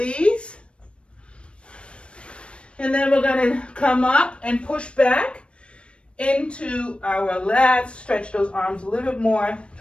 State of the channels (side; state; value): right; late; 0.058 ms